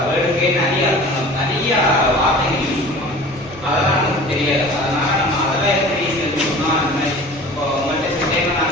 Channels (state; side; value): normal; both; correlation 0.42